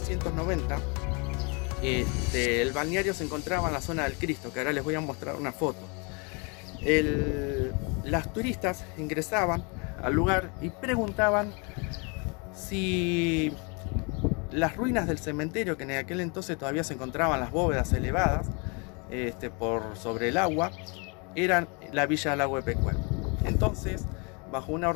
el balneario se encontraba en la zona del Cristo, que ahora les voy a mostrar una foto. Las turistas ingresaban al lugar y preguntaban si las ruinas del cementerio, que en aquel entonces todavía se encontraban las bóvedas elevadas por sobre el agua, eran la villa del Lago de Pecuén. Entonces, bajo una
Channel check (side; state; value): right; quieter; 32.5 dB